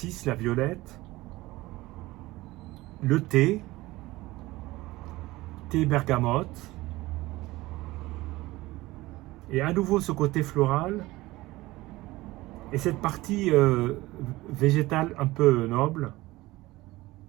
la violette, le thé bergamote, et à nouveau ce côté floral, et cette partie végétale un peu noble,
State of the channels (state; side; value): quieter; left; 19.1 dB